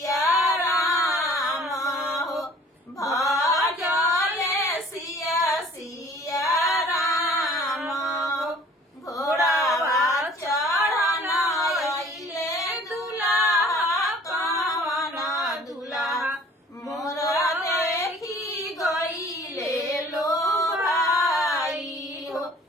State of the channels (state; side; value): normal; both; correlation 0.51